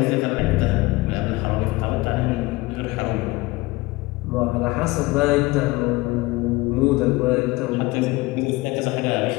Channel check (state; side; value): quieter; right; 21.3 dB